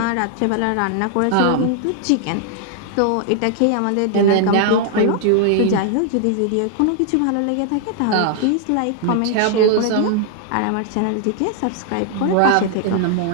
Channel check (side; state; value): both; different; correlation 0.00